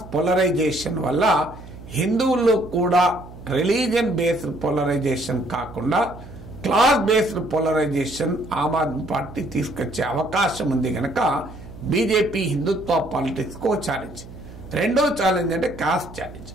పోలరైజేషన్ వల్ల హిందువుల్లో కూడా రిలీజియన్ బేస్డ్ పోలరైజేషన్ కాకుండా క్లాస్ బేస్డ్ పోలరైజేషన్ ఆమ్ ఆద్మీ పార్టీ తీసుకొచ్చే అవకాశం ఉంది కనుక బీజేపీ హిందుత్వ పాలిటిక్స్ కు ఛాలెంజ్. రెండో ఛాలెంజ్ అంటే కాస్ట్ ఛాలెంజ్.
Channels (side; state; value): right; noise; hum, 16 dB below the sound